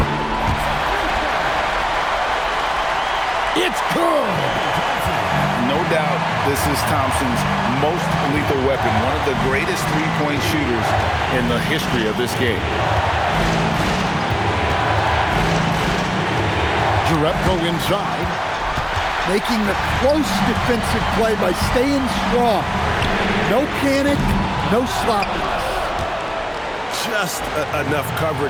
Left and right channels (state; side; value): identical; both; correlation 1.00